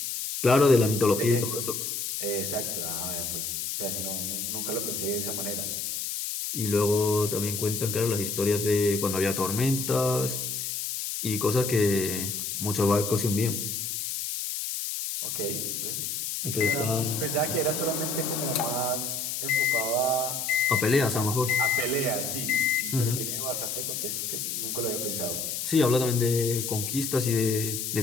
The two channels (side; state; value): left; noise; hiss, 3 dB below the sound